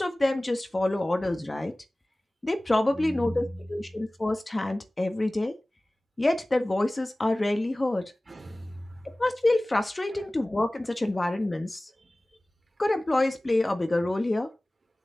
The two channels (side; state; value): both; normal; correlation 0.98